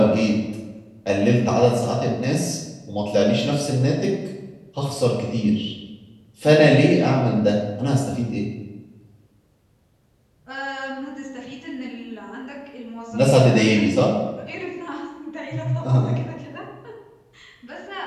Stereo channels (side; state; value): both; identical; correlation 1.00